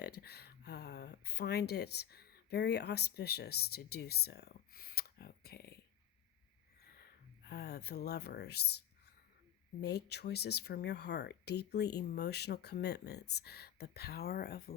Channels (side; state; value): right; quieter; 11.1 dB